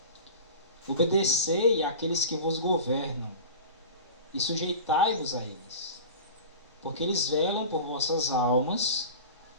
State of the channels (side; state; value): both; inverted; correlation -0.34